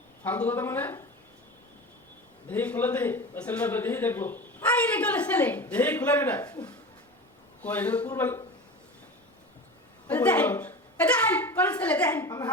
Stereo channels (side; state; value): both; normal; correlation 0.31